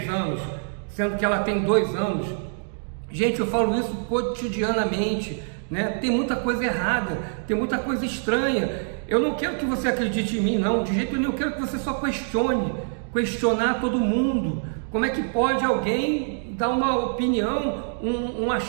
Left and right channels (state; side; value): silent; left; digital silence